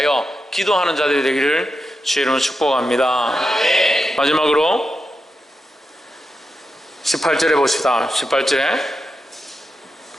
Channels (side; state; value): both; normal; correlation 0.88